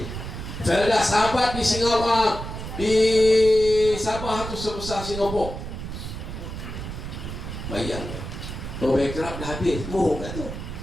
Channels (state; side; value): noise; right; rumble, 8 dB below the sound